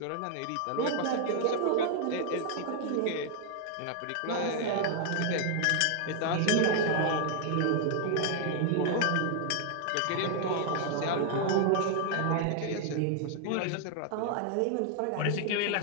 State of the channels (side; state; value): both; different; correlation 0.00